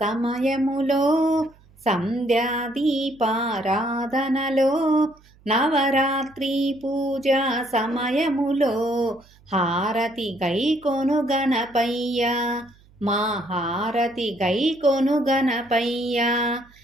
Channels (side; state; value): right; noise; hum, 28 dB below the sound